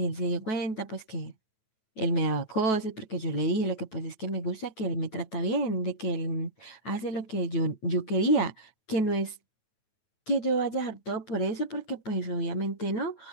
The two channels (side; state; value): right; late; 9.2 ms